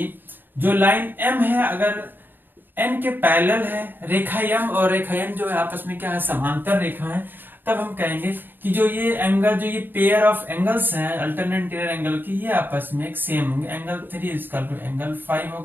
जो लाइन M है अगर N के पैरेलल है, रेखा M और रेखा N जो है आपस में क्या है, समांतर रेखा है, तब हम कहेंगे कि जो ये एंगल, जो ये पेयर ऑफ एंगल्स हैं अल्टरनेट इंटीरियर एंगल की, ये आपस में एक सेम होंगे। एंगल 3 इक्वल टू एंगल 5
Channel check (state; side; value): late; left; 0.093 ms